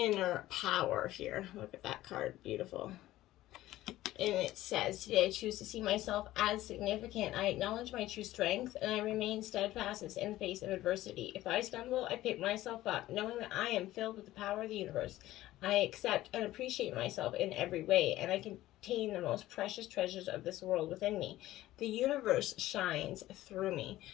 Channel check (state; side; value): quieter; right; 15.5 dB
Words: power here. Look at that card. Beautiful. And it says, today I choose to see myself as significant. I acknowledge my true strength and I remain steadfast in the face of adversity. If I stumble, I pick myself up, knowing that I am filled with the power of the universe. I accept and appreciate myself in every way, and I contain the most precious treasures of this world within me. The universe shines through me.